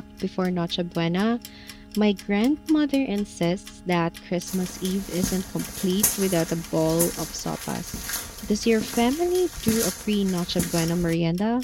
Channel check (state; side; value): identical; both; correlation 1.00